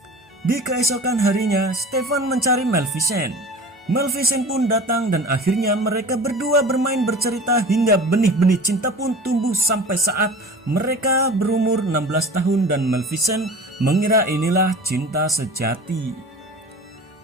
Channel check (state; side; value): normal; both; correlation 0.38